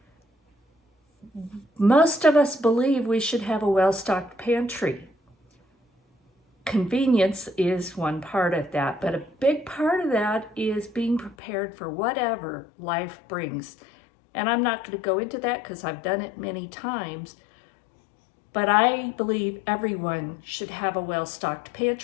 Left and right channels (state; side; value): drops out; right; at 11.4 s